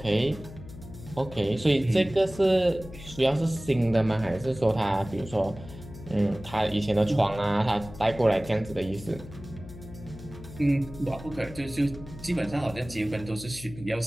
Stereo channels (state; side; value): noise; left; hum, 15 dB below the sound